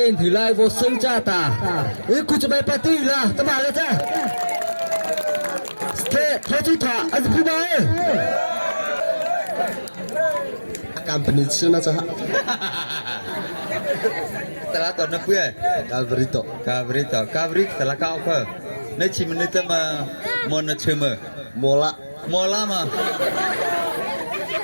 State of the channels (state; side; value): inverted; both; correlation -1.00